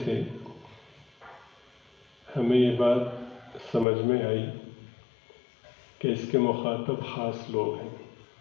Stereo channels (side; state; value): right; drops out; at 3.9 s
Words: سے ہمیں یہ بات سمجھ میں آئی کہ اس کے مخاطب خاص لوگ ہیں۔